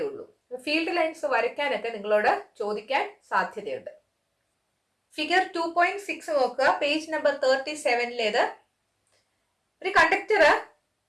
ഉള്ളൂ. ഫീൽഡ് ലൈൻസ് വരയ്ക്കാനൊക്കെ നിങ്ങളോട് ചോദിക്കാൻ സാധ്യതയുണ്ട്. ഫിഗർ 2.6 നോക്കുക, പേജ് നമ്പർ 37. ഒരു കണ്ടക്ടർ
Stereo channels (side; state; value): both; identical; correlation 1.00